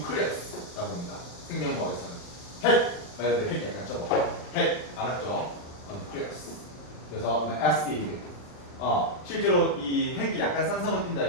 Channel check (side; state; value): right; late; 39 ms